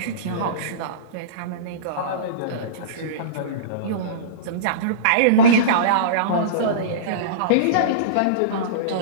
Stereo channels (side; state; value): both; different; correlation -0.06